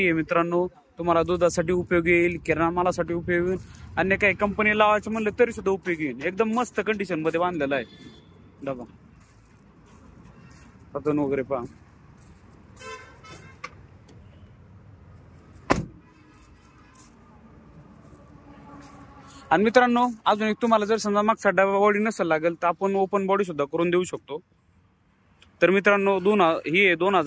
आहे मित्रांनो, तुम्हाला दुधासाठी उपयोगी येईल, किराणा मालासाठी उपयोगी येईल, अन्य काही कंपनी लावायचं म्हणलं तरी सुद्धा उपयोगी येईल। एकदम मस्त कंडिशन मध्ये बांधलेला आहे डबा, पतन वगैरे पहा। आणि मित्रांनो अजून एक तुम्हाला जर समजा मागचा डबा बॉडी नसेल लागेल तर आपण ओपन बॉडी सुद्धा करून देऊ शकतो। तर मित्रांनो ही आहे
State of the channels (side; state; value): both; identical; correlation 1.00